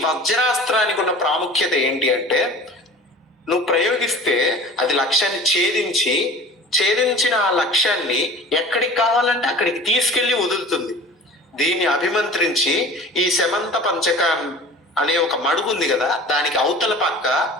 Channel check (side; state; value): both; normal; correlation 0.41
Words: వజ్రాస్త్రానికి ఉన్న ప్రాముఖ్యత ఏంటి అంటే, నువ్వు ప్రయోగిస్తే అది లక్ష్యాన్ని ఛేదించిన ఆ లక్ష్యాన్ని ఎక్కడికి కావాలంటే అక్కడికి తీసుకెళ్లి వదులుతుంది. దీన్ని అభిమంత్రించి ఈ శమంత పంచక అనే ఒక మడుగు ఉంది కదా, దానికి అవతల పక్క